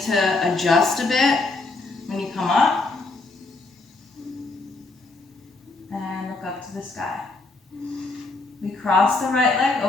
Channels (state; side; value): quieter; right; 3.4 dB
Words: to adjust a bit when you come up. And look up to the sky. We cross the right leg